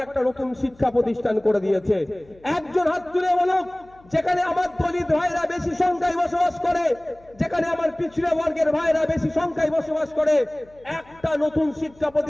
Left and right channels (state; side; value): noise; left; hum, 28 dB below the sound